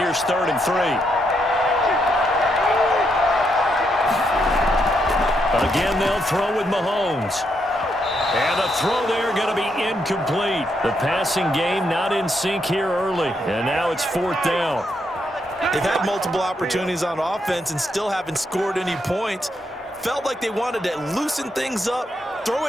3rd and 3. Again, they'll throw with Mahomes. And the throw there going to be incomplete. The passing game not in sync here early. And now it's 4th down. They've had multiple opportunities on offense and still haven't scored any points. felt like they wanted to loosen things up, throw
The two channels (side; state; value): both; normal; correlation 0.78